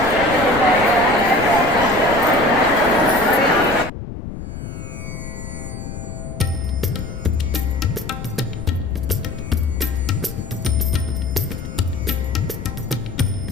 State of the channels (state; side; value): noise; left; rumble, 9 dB below the sound